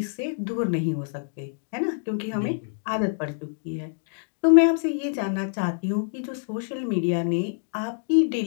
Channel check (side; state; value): right; silent; digital silence